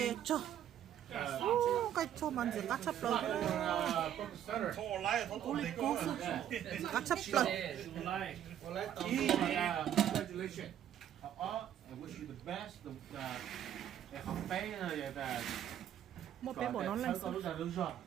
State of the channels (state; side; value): quieter; left; 10.5 dB